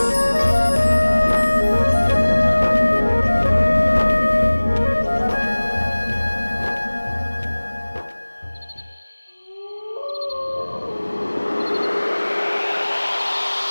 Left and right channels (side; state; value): both; inverted; correlation -1.00